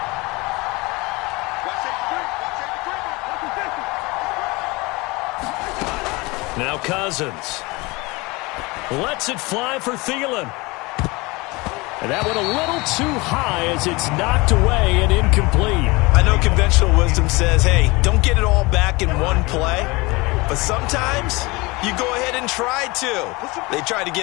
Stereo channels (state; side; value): quieter; right; 24.2 dB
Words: Now Cousins lets it fly for Thielen. And that went a little too high as it's knocked away and incomplete. I know conventional wisdom says, hey, don't get it all back in one play. But sometimes you go ahead and try to. They tried to